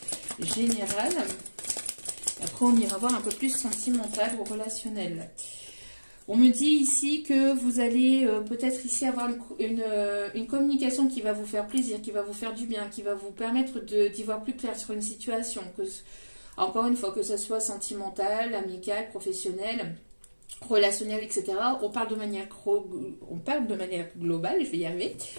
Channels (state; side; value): inverted; both; correlation -1.00